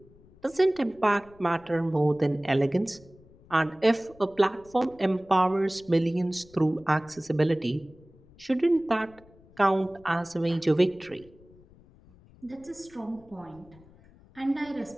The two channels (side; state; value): left; noise; rumble, 26 dB below the sound